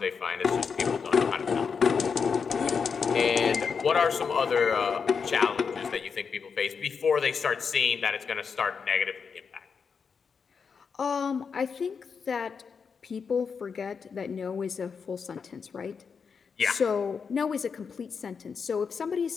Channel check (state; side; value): quieter; right; 5.9 dB